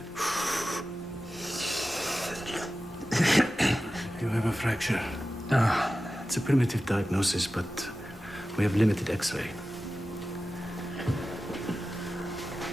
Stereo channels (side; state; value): both; normal; correlation 0.94